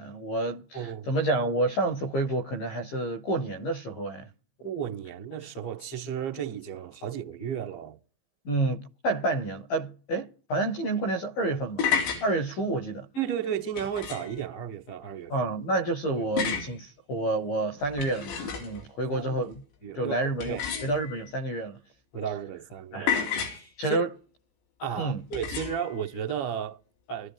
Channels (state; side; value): late; right; 15 ms